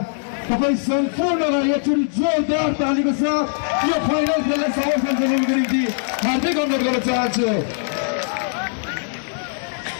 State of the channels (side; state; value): right; silent; digital silence